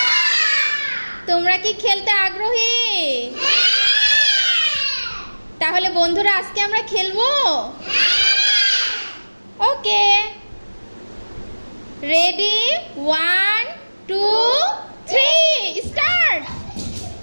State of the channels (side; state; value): both; inverted; correlation -1.00